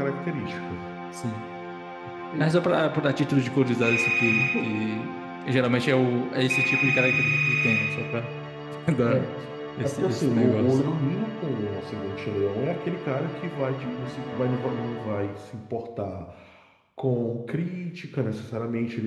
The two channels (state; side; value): identical; both; correlation 1.00